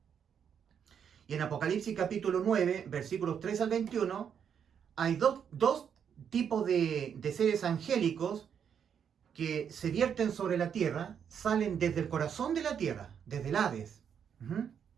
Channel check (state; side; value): quieter; left; 7.9 dB